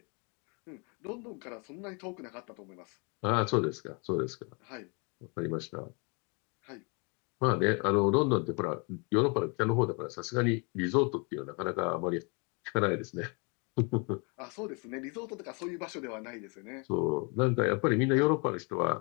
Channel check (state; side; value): quieter; right; 33.6 dB